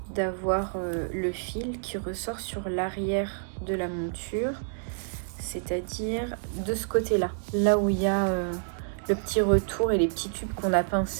d'avoir le fil qui ressort sur l'arrière de la monture, c'est-à-dire de ce côté-là, là où il y a le petit retour et les petits tubes qu'on a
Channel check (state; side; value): silent; left; digital silence